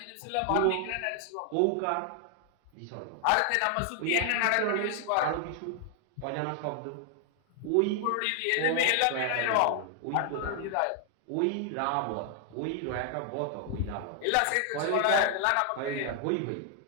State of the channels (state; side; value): different; both; correlation 0.00